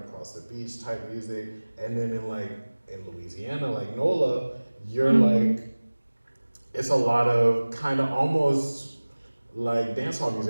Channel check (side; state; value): both; inverted; correlation -1.00